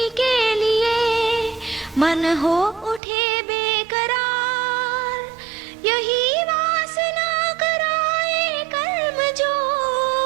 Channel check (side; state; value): left; drops out; at 3.0 s